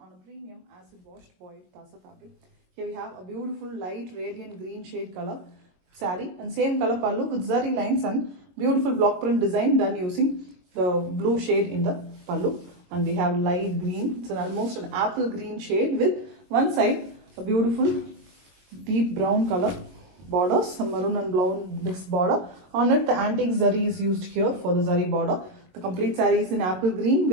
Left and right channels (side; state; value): left; late; 22 ms